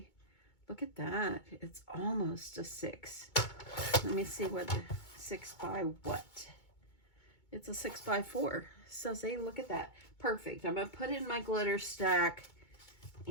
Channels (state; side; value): late; right; 2.2 ms